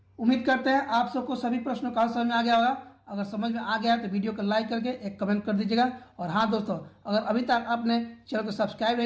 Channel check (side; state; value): both; identical; correlation 1.00